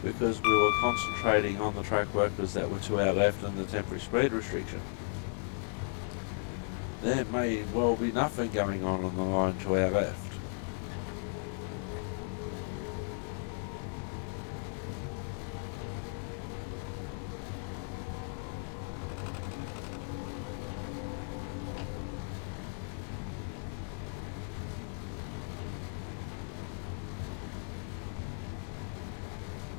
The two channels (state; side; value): silent; right; 54 dB below the other